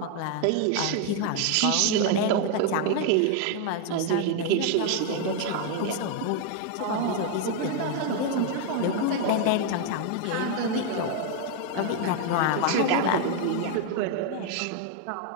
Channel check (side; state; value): both; different; correlation 0.01